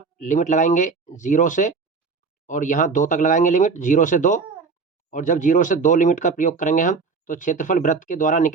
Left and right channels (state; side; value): quieter; left; 4.7 dB